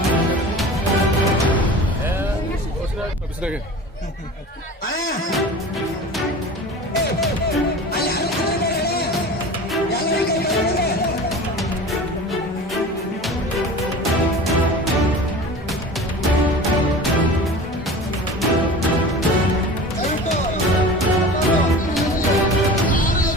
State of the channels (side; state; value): both; normal; correlation 0.36